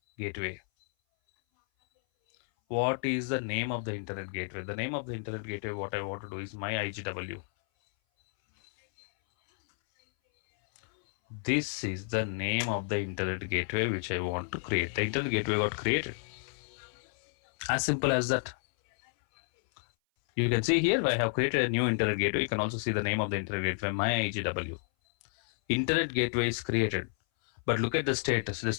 gateway. What is the name of the internet gateway? The name of the internet gateway, what I want to do is my IGW. This is the name of the internet gateway which I want to create. The internet gateway got created. As simple as that. You can see here I have created a new internet gateway. You can also see the name of the internet gateway, my IGW. Internet gateway is created. But look at the status. The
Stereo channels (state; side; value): silent; right; 57 dB below the other